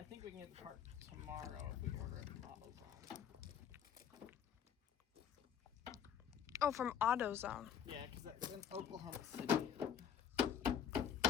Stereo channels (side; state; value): right; quieter; 8.6 dB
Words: think we can get the part tomorrow if we order it from AutoZone. Oh, from AutoZone. Yeah, because that's in Oklahoma City.